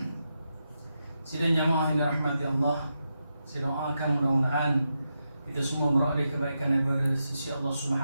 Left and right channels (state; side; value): inverted; both; correlation -0.87